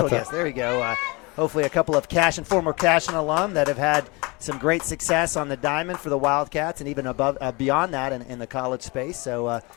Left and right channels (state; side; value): quieter; right; 26.4 dB